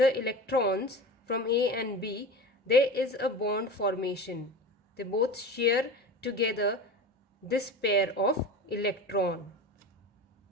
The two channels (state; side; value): normal; both; correlation 0.31